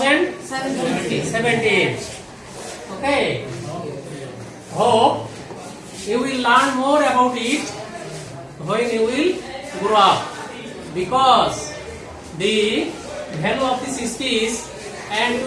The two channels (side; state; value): both; identical; correlation 1.00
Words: Okay. Hope you will learn more about it when you will grow up, because the value of this speech and